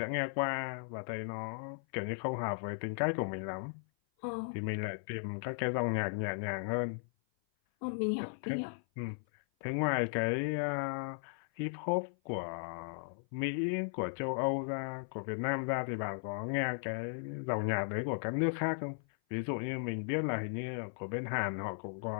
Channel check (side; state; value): right; silent; 53 dB below the other